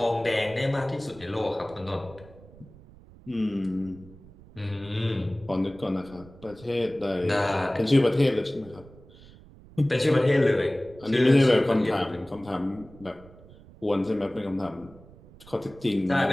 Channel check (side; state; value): right; noise; rumble, 22 dB below the sound